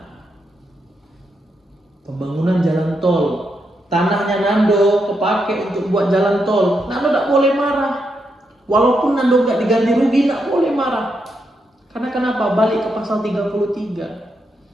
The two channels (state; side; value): normal; both; correlation 0.82